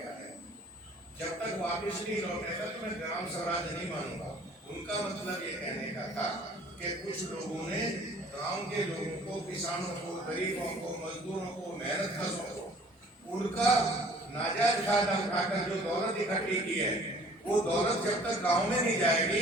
है, जब तक वापिस नहीं लौटेगा तो मैं ग्राम स्वराज नहीं मानूंगा। उनका मतलब ये कहने का था कि कुछ लोगों ने गांव के लोगों को, किसानों को, गरीबों को, मजदूरों को, मेहनत कशों को, उनका नाजायज फायदा उठाकर जो दौलत इकट्ठी की है, वो दौलत जब तक गांव में नहीं जाएगी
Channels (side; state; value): both; normal; correlation 0.52